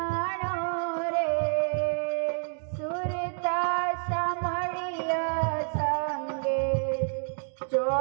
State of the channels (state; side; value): silent; left; 59 dB below the other